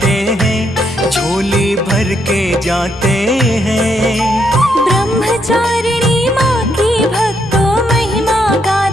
हैं, झोली भर के जाते हैं। ब्रह्मचारिणी माँ की भक्तों महिमा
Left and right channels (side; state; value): both; normal; correlation 0.76